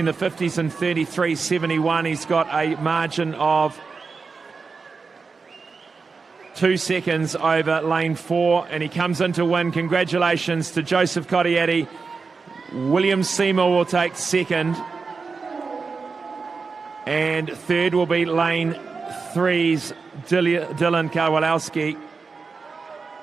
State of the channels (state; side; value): quieter; left; 4.7 dB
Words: the 50s in 33.71. He's got a margin of 2 seconds over lane 4, and he comes in to win. Congratulations to Joseph Cottietti. William Seymour will take second, and third will be lane 3's Dylan Kowalowski.